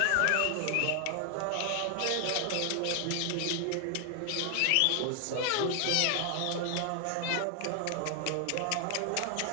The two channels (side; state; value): both; different; correlation 0.00